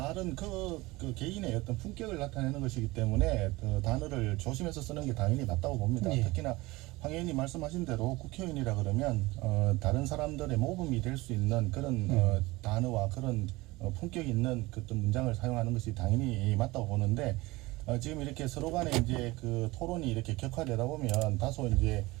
그 개인의 어떤 품격을 나타내는 것이기 때문에 그 단어를 조심해서 쓰는 게 당연히 맞다고 봅니다. 특히나 황 의원님 말씀하신 대로 국회의원이라 그러면 다른 사람들의 모범이 될 수 있는 그런 단어와 그런 품격 있는 그 어떤 문장을 사용하는 것이 당연히 맞다고 보는데 지금 이렇게 서로 간에 이제 그 토론이 이렇게 격화되다 보면 다소 이제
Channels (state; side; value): quieter; left; 21.2 dB